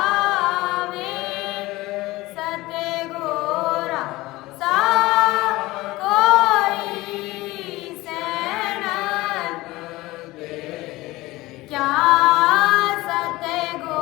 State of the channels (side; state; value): right; quieter; 19.3 dB